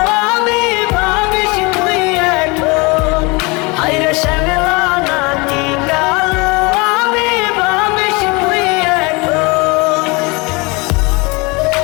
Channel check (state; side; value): quieter; right; 27.0 dB